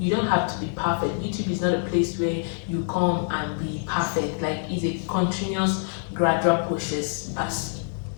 don't have to be perfect. YouTube is not a place where you come and be perfect. Like, it's a continuous gradual process.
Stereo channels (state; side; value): silent; right; 59 dB below the other